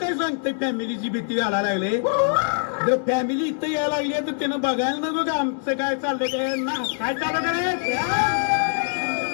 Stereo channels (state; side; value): silent; right; 63 dB below the other